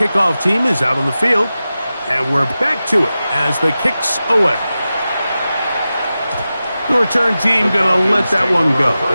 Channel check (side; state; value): both; inverted; correlation -0.94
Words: team is out on the field, and we're back to it as the kick's away. The return team going to let that one go.